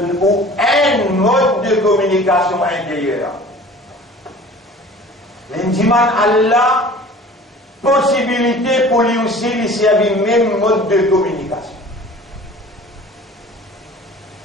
un mode de communication intérieure. Il dit, Allah, possibilité pour lui aussi, il y a le même mode de communication.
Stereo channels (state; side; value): normal; both; correlation 0.44